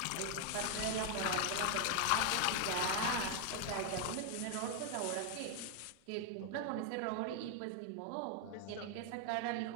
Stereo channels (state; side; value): different; both; correlation 0.00